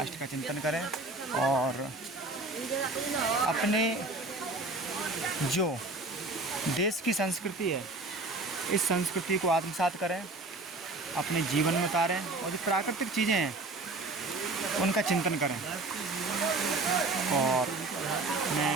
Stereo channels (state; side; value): quieter; left; 3.1 dB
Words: का चिंतन करें और अपने जो देश की संस्कृति है, इस संस्कृति को आत्मसात करें, अपने जीवन में उतारें और जो प्राकृतिक चीज़ें हैं उनका चिंतन करें। और